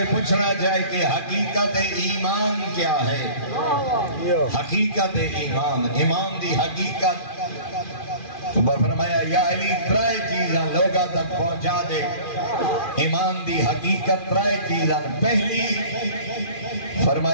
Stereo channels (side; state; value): right; late; 2.4 ms